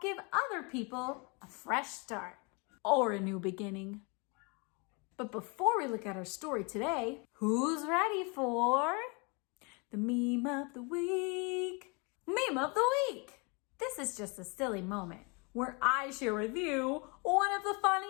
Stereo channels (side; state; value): right; quieter; 31.3 dB